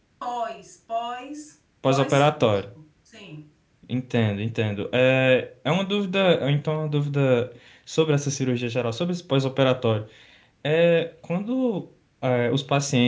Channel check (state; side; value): identical; both; correlation 1.00